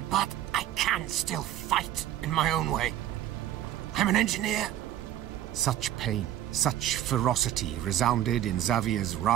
but I can still fight in my own way. I'm an engineer. Such pain, such ferocity resounded in Xavier's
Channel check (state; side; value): quieter; left; 12.1 dB